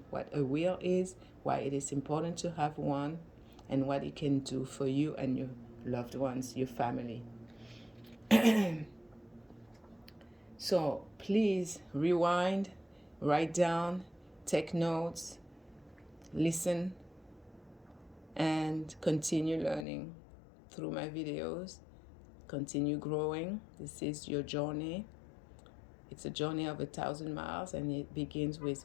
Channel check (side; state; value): right; drops out; at 19.9 s